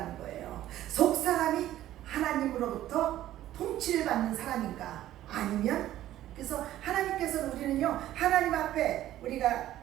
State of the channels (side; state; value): left; quieter; 13.5 dB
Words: 거예요. 속사람이 하나님으로부터 통치를 받는 사람인가, 아니면, 그래서 하나님께서는 우리는요, 하나님 앞에 우리가